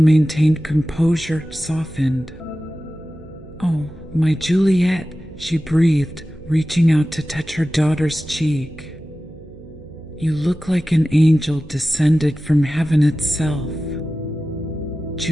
composure softened. Oh, my Juliet, she breathed, reaching out to touch her daughter's cheek. You look like an angel descended from heaven itself.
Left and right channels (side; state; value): right; noise; hum, 19 dB below the sound